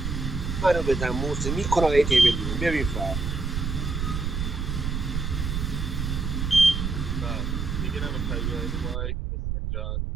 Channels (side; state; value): right; noise; rumble, 2 dB below the sound